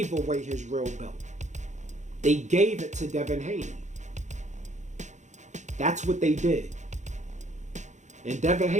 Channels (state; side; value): late; left; 0.35 ms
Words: away his real belt. They gave it to Devin Haney. That's what they did. And Devin